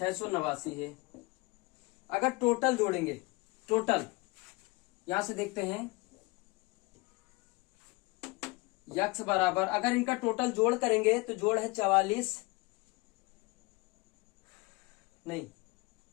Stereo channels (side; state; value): right; quieter; 24.6 dB